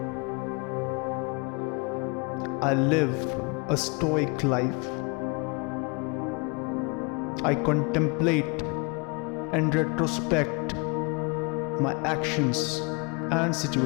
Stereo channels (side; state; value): right; quieter; 31.7 dB